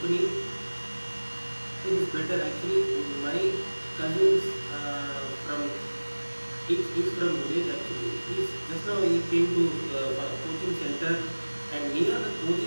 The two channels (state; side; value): inverted; both; correlation -1.00